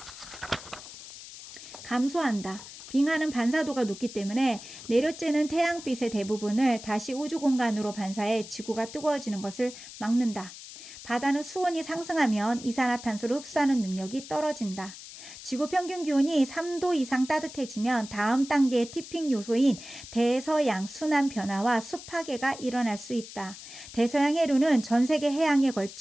감소한다. 빙하는 반사도가 높기 때문에 내려쬐는 태양빛의 대부분을 다시 우주 공간으로 반사해 지구가 뜨거워지는 것을 막는다. 바다는 수온이 상승하면 이산화탄소를 흡수하는 능력이 떨어진다. 지구 평균 기온이 3도 이상 따뜻해지면 다음 단계의 티핑 요소인 대서양 순환 변화와 습하게가 일어날 수 있다. 대서양 해류는 전 세계 해양에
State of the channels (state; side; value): noise; left; hiss, 14 dB below the sound